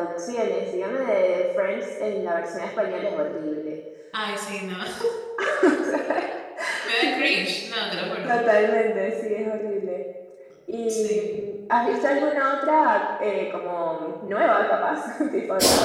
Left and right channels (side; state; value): both; identical; correlation 1.00